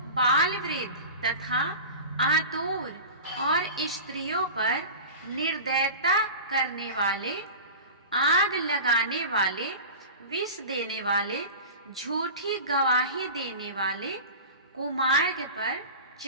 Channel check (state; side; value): inverted; both; correlation -0.32